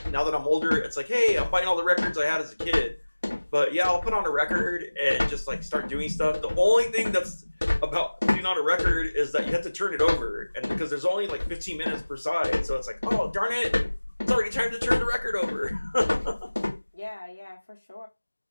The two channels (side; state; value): both; inverted; correlation -1.00